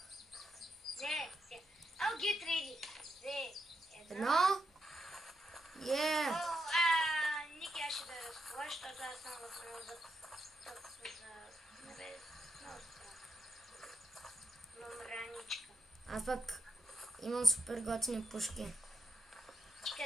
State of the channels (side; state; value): both; normal; correlation 0.83